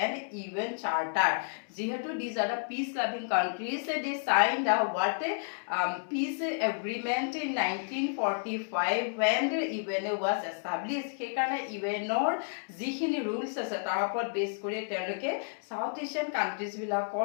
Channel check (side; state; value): right; silent; digital silence